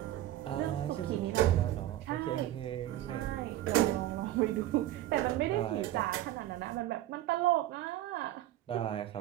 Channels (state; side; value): quieter; left; 14.1 dB